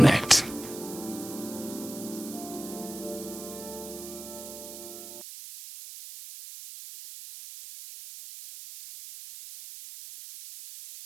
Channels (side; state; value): right; noise; hiss, 12 dB below the sound